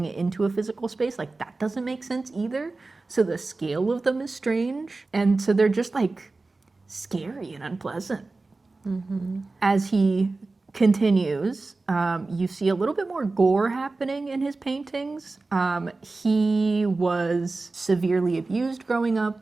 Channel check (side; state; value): left; quieter; 3.5 dB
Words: it into a physical space, like that doesn't make sense either. So the scale of them is strange, and so they're just like scary and unpleasant. As he continues, you see a little bit more gore happening in his paintings. He was severely abused growing up.